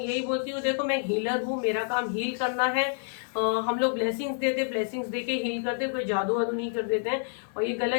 यही बोलती हूँ, देखो मैं हीलर हूँ, मेरा काम हील करना है। हम लोग ब्लेसिंग्स देते, ब्लेसिंग्स देके हील करते, कोई जादू वादू नहीं कर देते हैं। और ये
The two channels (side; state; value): right; silent; 59 dB below the other